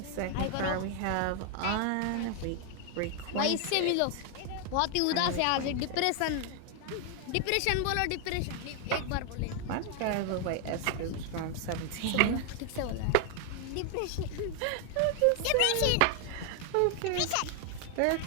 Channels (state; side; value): different; both; correlation 0.00